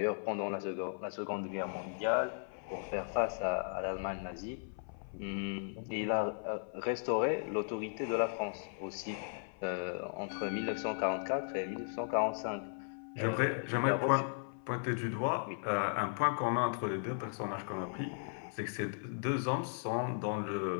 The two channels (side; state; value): right; silent; 53 dB below the other